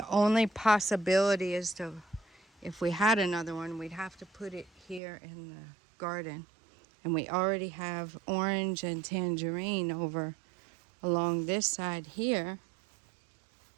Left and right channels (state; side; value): drops out; left; at 5.0 s